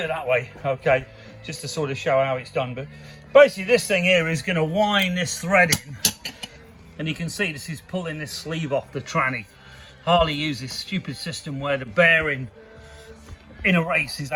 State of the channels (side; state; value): both; identical; correlation 1.00